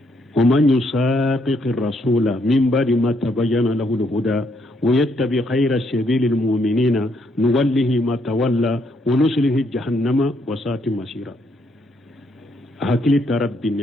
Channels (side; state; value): both; normal; correlation 0.73